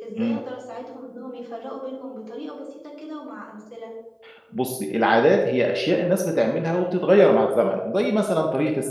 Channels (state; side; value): identical; both; correlation 1.00